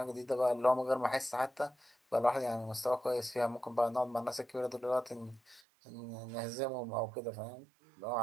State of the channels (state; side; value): drops out; left; at 5.6 s